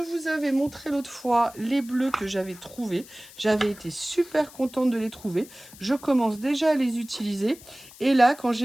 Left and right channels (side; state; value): left; noise; hiss, 20 dB below the sound